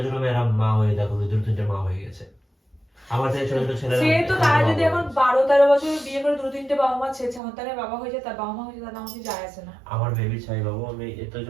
ছোট মেয়েরা মা হয়ে দেখো, 2-3টা মা হয়ে গেছে। আমার থেকে ছোট ছোট ছেলেরা সে তো তারা যদি এখন 12-13 বছর বিয়ে করে 2-3টে বাবা মা ছেলে সন্তানের বাবা হয়ে যায়, তার বাবা মা হয়ে যায়, তাহলে আমাকে যায় আসে না। আমার বেবি চাই বাবু। আমি এত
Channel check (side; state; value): left; drops out; at 7.4 s